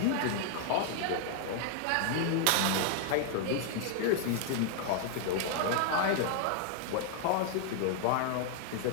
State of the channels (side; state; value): both; different; correlation 0.00